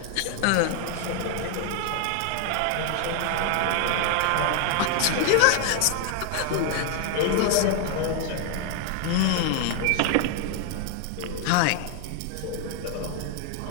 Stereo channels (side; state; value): both; different; correlation 0.00